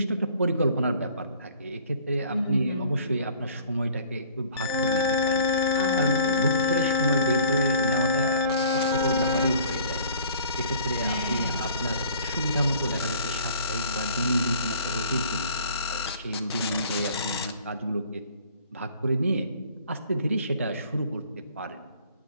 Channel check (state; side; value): inverted; both; correlation -0.52